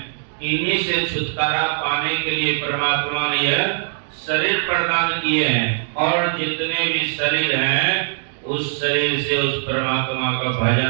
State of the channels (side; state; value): left; silent; digital silence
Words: इन्हीं से छुटकारा पाने के लिए परमात्मा ने यह शरीर प्रदान किए हैं। और जितने भी शरीर हैं उस शरीर से उस परमात्मा का